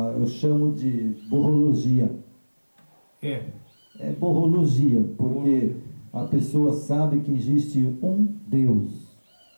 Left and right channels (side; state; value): both; inverted; correlation -1.00